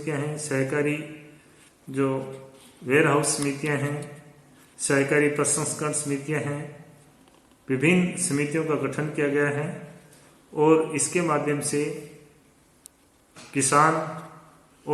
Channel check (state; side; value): identical; both; correlation 1.00